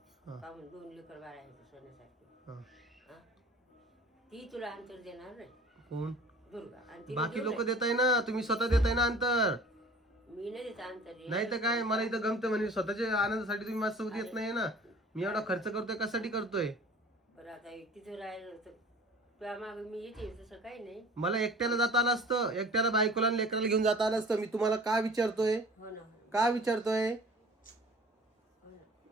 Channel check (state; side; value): normal; both; correlation 0.45